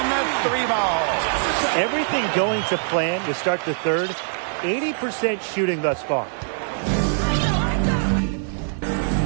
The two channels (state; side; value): silent; left; 59 dB below the other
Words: the three ball. Everything going to plan to start the third. 80% shooting thus far.